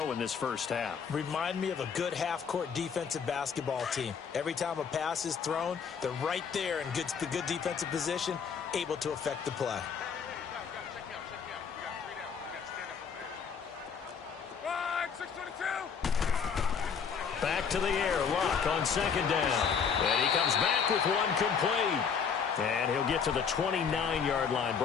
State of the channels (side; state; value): right; quieter; 6.5 dB